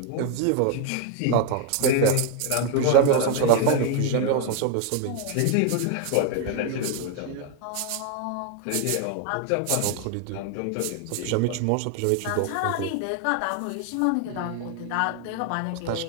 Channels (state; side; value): different; both; correlation 0.01